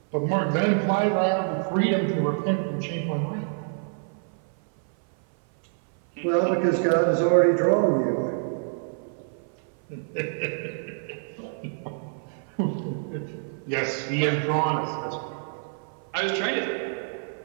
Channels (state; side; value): silent; left; 58 dB below the other